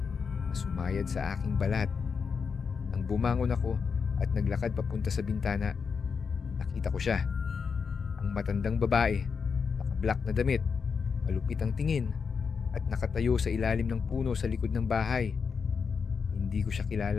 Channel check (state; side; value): quieter; right; 5.7 dB